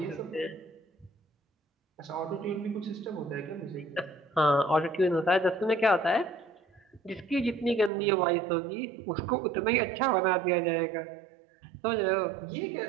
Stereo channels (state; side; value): drops out; left; at 7.9 s